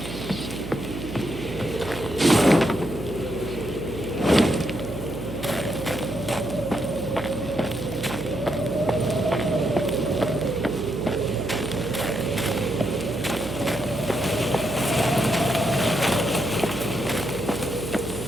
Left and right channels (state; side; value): noise; right; hum, 10 dB below the sound